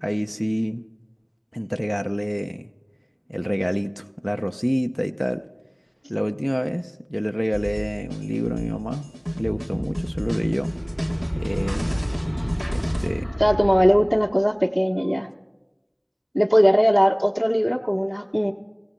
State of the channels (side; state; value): both; identical; correlation 1.00